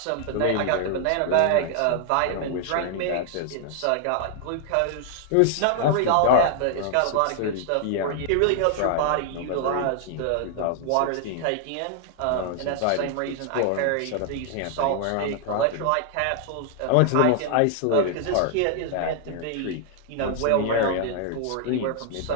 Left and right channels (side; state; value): both; different; correlation 0.00